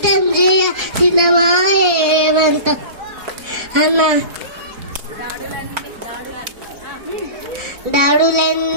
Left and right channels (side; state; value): left; late; 4.1 ms